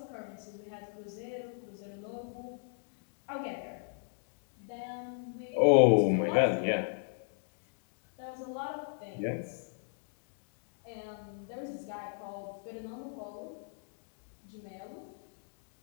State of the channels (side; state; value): right; silent; digital silence